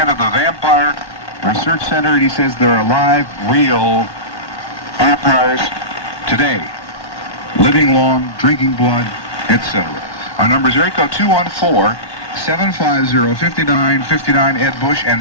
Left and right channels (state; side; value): late; right; 1.1 ms